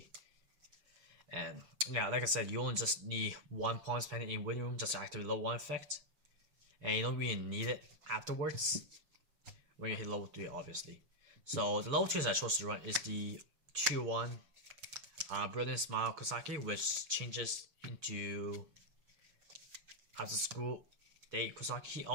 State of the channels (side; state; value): left; late; 6.5 ms